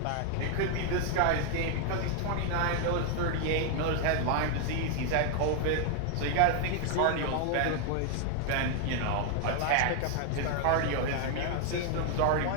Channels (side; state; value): both; different; correlation 0.00